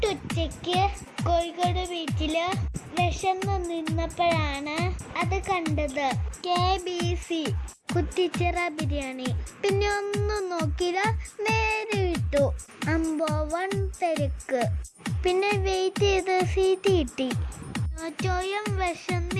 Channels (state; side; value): identical; both; correlation 1.00